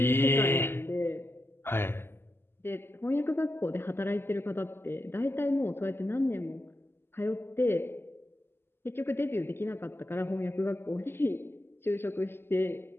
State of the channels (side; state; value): right; late; 0.11 ms